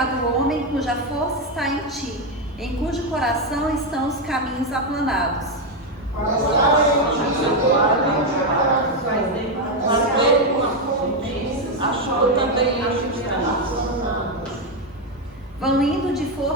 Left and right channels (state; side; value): normal; both; correlation 0.06